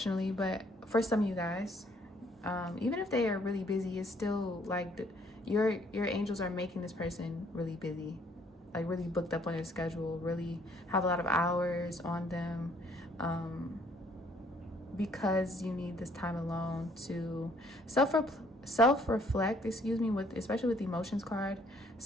But for some of you guys, even if they are really busy, it's still like your angels are making this person really busy, like really booked up on their schedule, really have a lot of hours on them, because you need this time alone to self-reflect, excuse me, with especially with the emotions card,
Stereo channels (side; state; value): both; normal; correlation 0.64